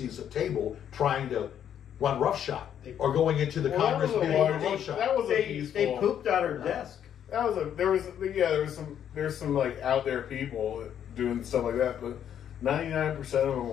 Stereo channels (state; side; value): quieter; right; 9.5 dB